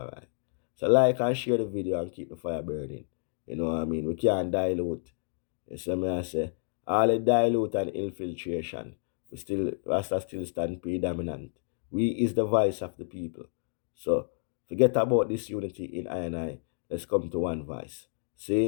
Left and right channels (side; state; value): right; silent; digital silence